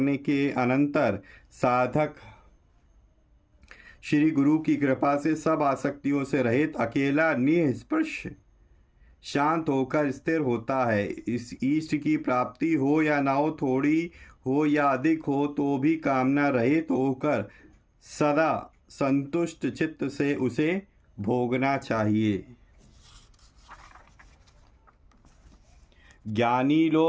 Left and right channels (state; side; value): identical; both; correlation 1.00